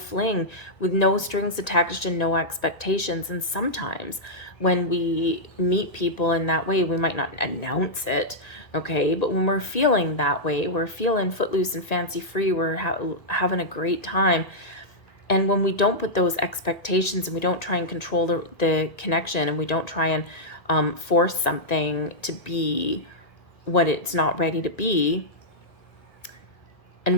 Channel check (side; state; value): right; late; 1.8 ms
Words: with no strings attached and no expectations. And sometimes when we meet people in that way, we might not announce it, okay? But when we're feeling that way, we're feeling footloose and fancy free, we're having a great time. And when we don't put those expectations and we don't try and control the connection, and we don't try and force something to be what it's not ready to be,